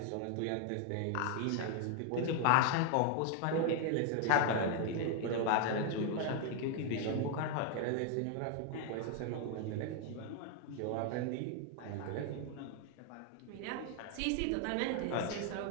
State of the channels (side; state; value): both; different; correlation 0.00